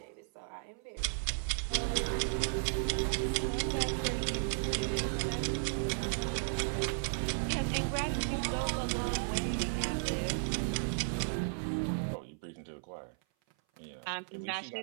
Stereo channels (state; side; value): silent; left; 55 dB below the other